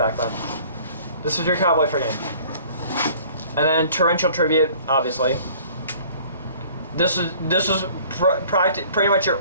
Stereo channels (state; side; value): inverted; both; correlation -0.52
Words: then. This was your Cowboy for game. And then Torrential Tribute, obviously. This was pretty much your